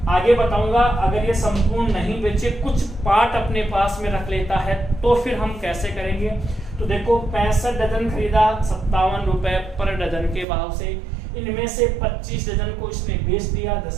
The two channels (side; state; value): left; drops out; at 10.5 s